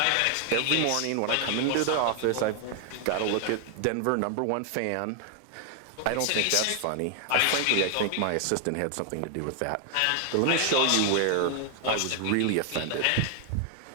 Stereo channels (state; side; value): different; both; correlation 0.00